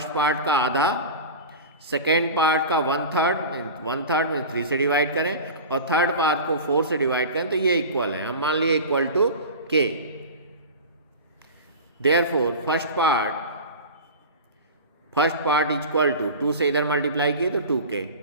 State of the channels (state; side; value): inverted; both; correlation -0.31